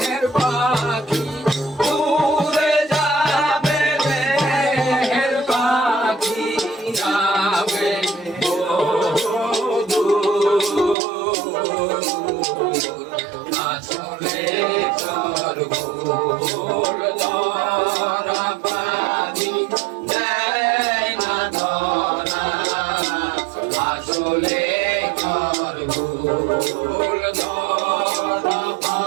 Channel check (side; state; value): left; drops out; at 11.0 s